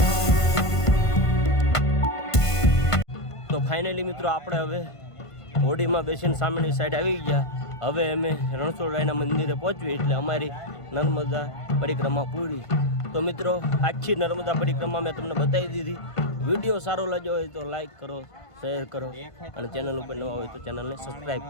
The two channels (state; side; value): late; right; 1.5 ms